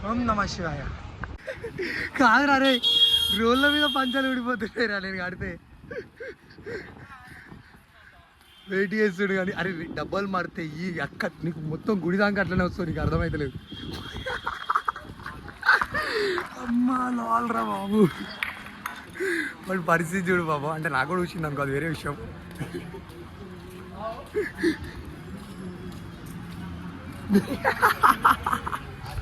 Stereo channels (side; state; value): both; identical; correlation 1.00